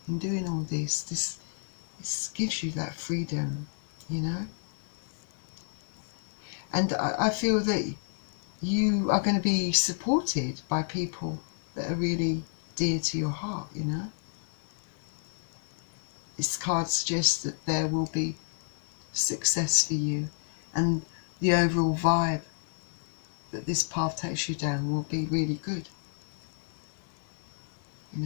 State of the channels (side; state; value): right; silent; digital silence